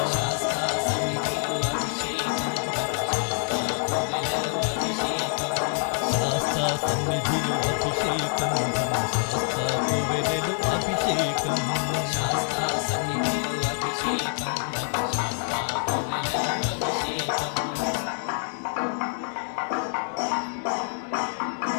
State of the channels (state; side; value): silent; right; digital silence